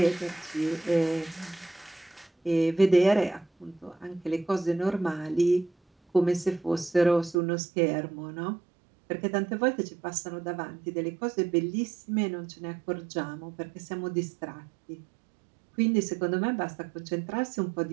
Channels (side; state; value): left; drops out; at 7.4 s